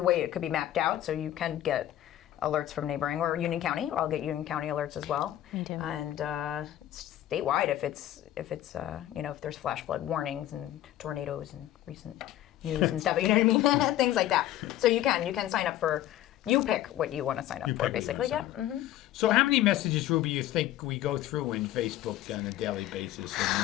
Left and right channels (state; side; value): quieter; right; 13.4 dB